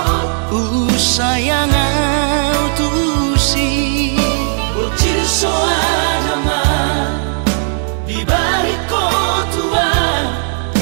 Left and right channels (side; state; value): left; silent; digital silence